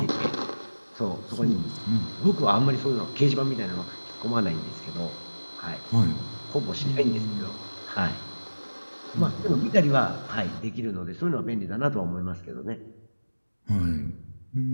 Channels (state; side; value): inverted; both; correlation -1.00